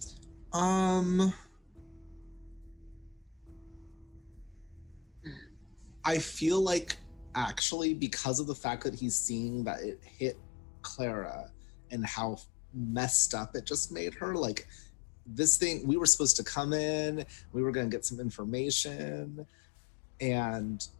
I feel like actually, because of the fact that he's seeing that it hit Clara and how messed up it just made her, like, this thing, we were supposed to come in, we were going to get some information, and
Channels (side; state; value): right; drops out; at 7.6 s